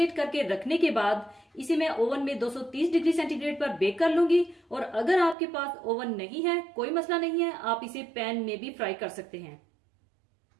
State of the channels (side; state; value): left; drops out; at 5.4 s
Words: करके रखने के बाद इसे मैं ओवन में 230 डिग्री सेंटीग्रेड पर बेक कर लूंगी। और अगर आपके पास ओवन नहीं है, कोई मसला नहीं है, आप इसे पैन में भी फ्राई कर सकते हैं।